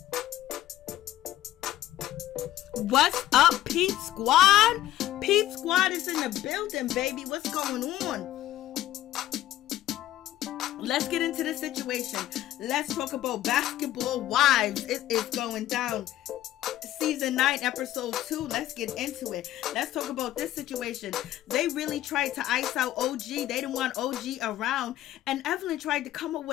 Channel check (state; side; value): quieter; right; 13.6 dB